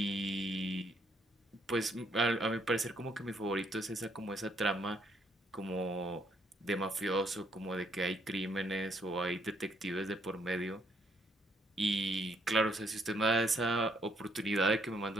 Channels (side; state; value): both; normal; correlation 0.70